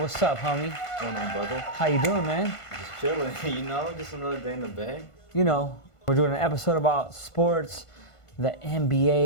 What's up, homie? What's going on, brother? How you doing, man? Just chilling, just another day in the bay. We're doing an episode about sports, the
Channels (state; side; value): late; right; 1.5 ms